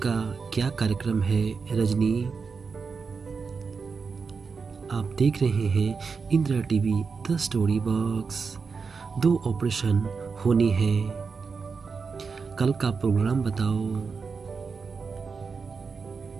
क्या कार्यक्रम है रजनी? आप देख रहे हैं Indira TV the story box. 2 operation होने हैं, कल का प्रोग्राम बताओ।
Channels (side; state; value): left; quieter; 5.2 dB